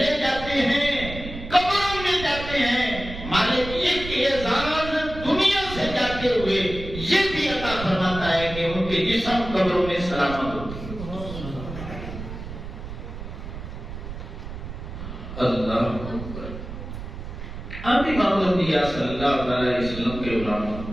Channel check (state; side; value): noise; right; rumble, 10 dB below the sound